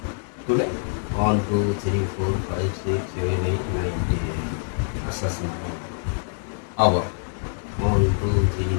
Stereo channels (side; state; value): right; silent; digital silence